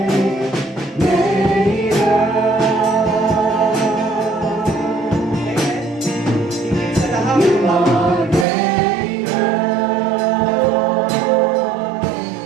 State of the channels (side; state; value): left; drops out; at 8.5 s